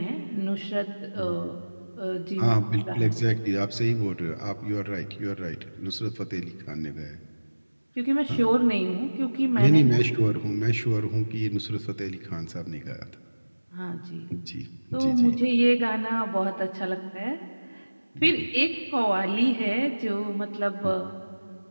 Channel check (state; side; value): inverted; both; correlation -1.00